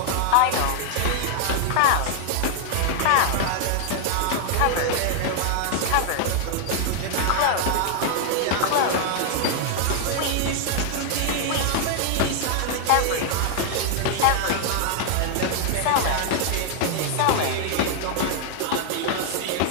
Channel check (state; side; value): different; both; correlation 0.00